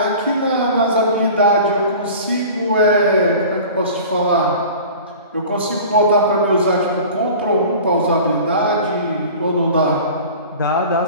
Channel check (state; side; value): inverted; both; correlation -0.40